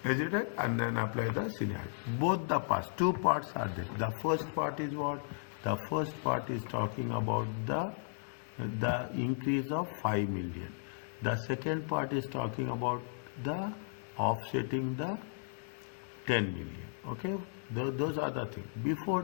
Is it right? And then apply the scenario. Both the parts, two parts are there. The first part is what? The first part is talking about the increase of 5 million. The second part is talking about the offsetting the 10 million. Okay, those are the things. Before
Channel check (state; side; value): silent; right; 54 dB below the other